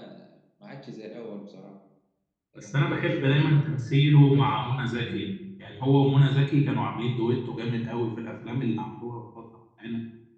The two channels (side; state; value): both; identical; correlation 1.00